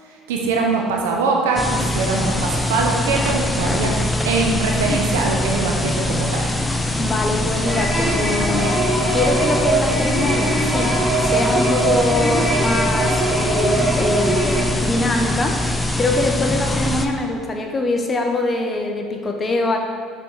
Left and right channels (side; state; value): both; normal; correlation 0.65